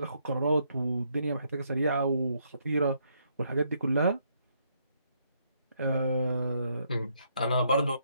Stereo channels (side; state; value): both; inverted; correlation -0.73